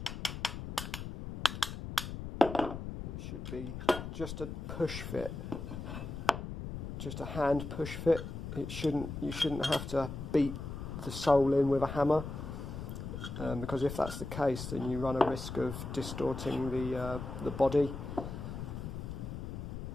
it should be just a push fit, just a hand push fit. You shouldn't have to beat the sole in with a hammer, because if that's the case, then you run a risk of distorting the body.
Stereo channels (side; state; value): left; noise; rumble, 7 dB below the sound